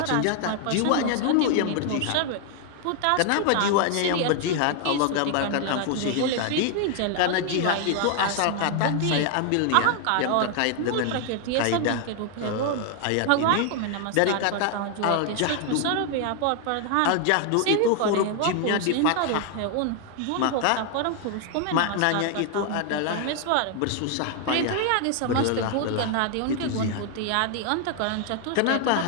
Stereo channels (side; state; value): both; different; correlation 0.00